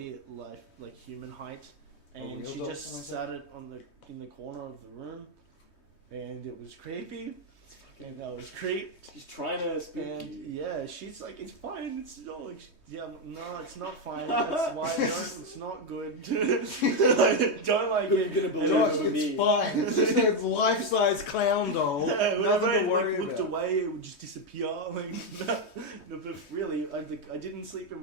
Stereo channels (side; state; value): right; late; 3.2 ms